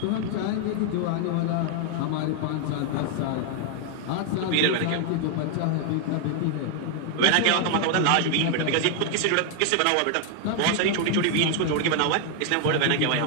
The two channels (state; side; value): different; both; correlation 0.00